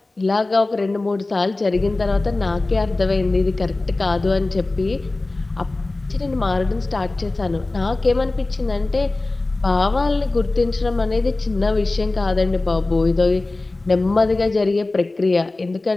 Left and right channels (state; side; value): quieter; right; 3.1 dB